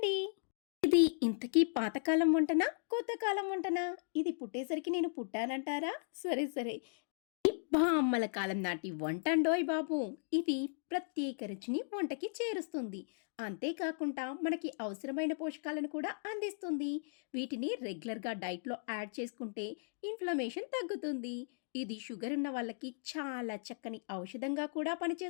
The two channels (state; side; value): silent; right; digital silence